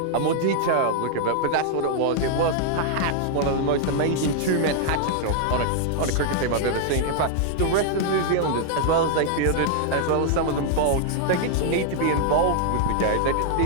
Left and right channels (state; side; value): different; both; correlation -0.01